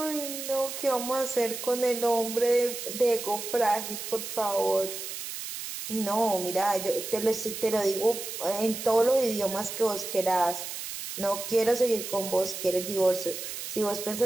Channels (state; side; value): noise; right; hiss, 7 dB below the sound